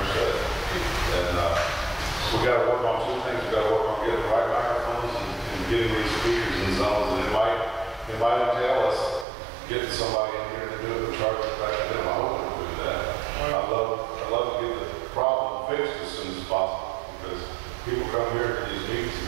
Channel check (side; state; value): left; drops out; at 9.2 s